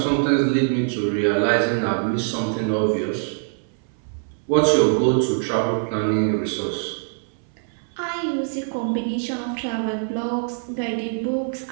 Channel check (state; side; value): silent; left; 63 dB below the other